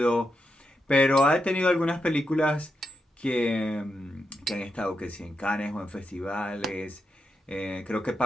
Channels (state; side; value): normal; both; correlation 0.85